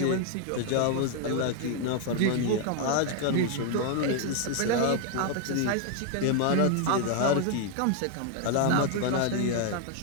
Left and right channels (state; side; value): different; both; correlation 0.00